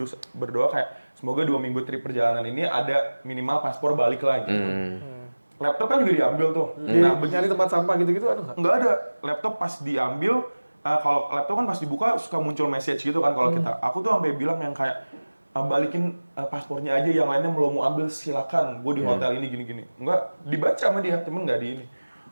berdoa kayak semoga 2 minggu trip perjalanan ini ada minimal paspor balik lah gitu. Laptop kan juga diambil tuh. Nah, Nyari tempat sampah gitu-gitu ada nggak? nggak ada. Laptop pas diambil, kalau laptop kan pas dibuka suka muncul message gitu kan kalau kita. Aku tuh sampai bilang yang kayak balikin paspornya aja, yang lainnya mau ambil silakan. Gue di hotel ini gini-gini. Enggak dibaca sama dia, cuman nggak di ini.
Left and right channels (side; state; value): both; inverted; correlation -1.00